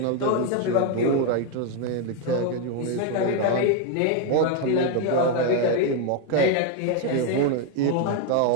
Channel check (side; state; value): both; different; correlation 0.01